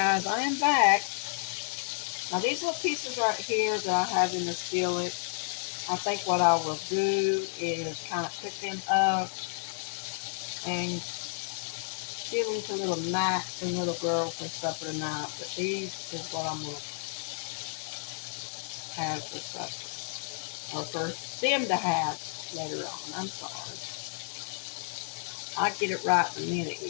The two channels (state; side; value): silent; right; digital silence